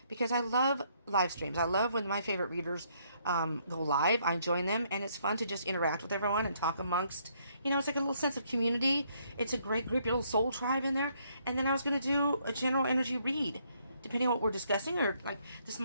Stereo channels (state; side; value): inverted; both; correlation -0.70